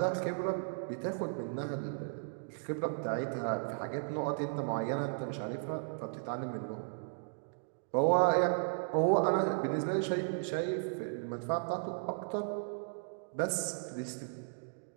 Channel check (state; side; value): silent; left; digital silence